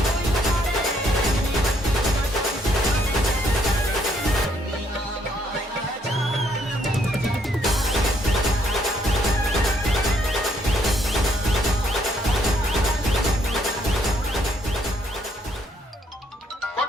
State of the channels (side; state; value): both; normal; correlation 0.70